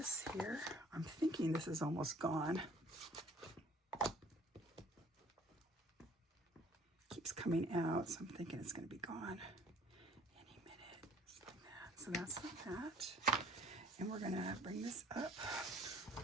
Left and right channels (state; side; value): normal; both; correlation 0.54